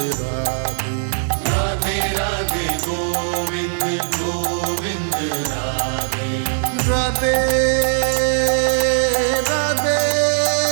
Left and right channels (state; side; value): silent; left; 64 dB below the other